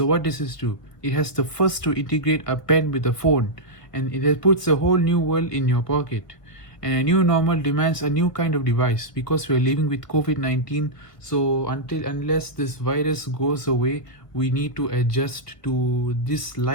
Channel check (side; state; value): right; late; 1.7 ms